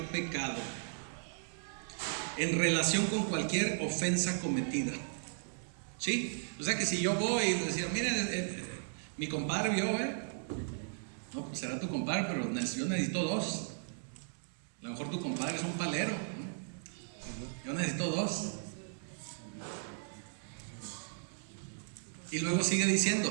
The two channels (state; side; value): silent; left; digital silence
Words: pecado, en relación con cualquier ofensa cometida. ¿Sí? O sea que si yo voy y les digo, miren, mi compadre vio, no, pues será tu compadre, pero yo necesito dos. A lo mejor tu compadre es un palero, ¿no? Yo necesito dos. Y luego sigue diciendo: